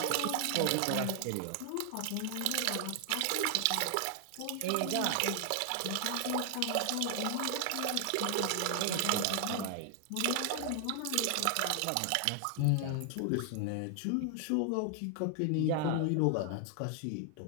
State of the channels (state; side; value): different; both; correlation 0.00